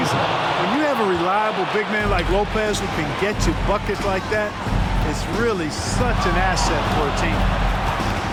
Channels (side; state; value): both; identical; correlation 1.00